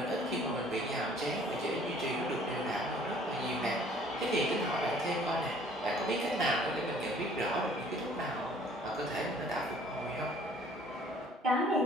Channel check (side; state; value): both; normal; correlation 0.56